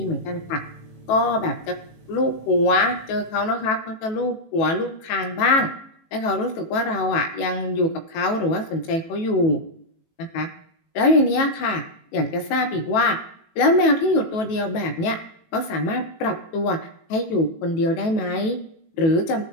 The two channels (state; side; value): late; right; 18 ms